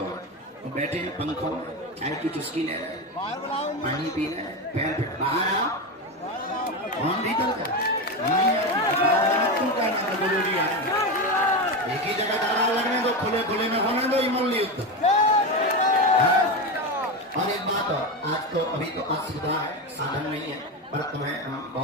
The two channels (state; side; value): normal; both; correlation 0.17